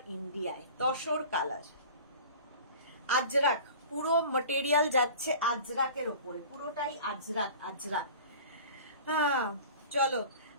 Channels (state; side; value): inverted; both; correlation -0.40